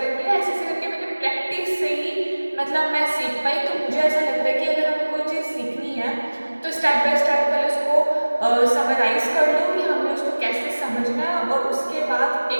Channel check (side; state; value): both; inverted; correlation -1.00